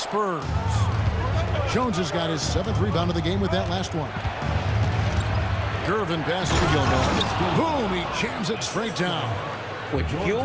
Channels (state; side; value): identical; both; correlation 1.00